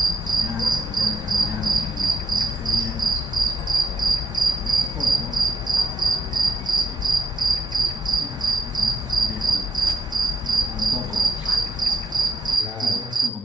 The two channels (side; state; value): both; normal; correlation 0.79